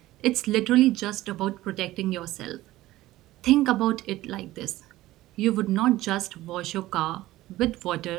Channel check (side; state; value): left; quieter; 16.5 dB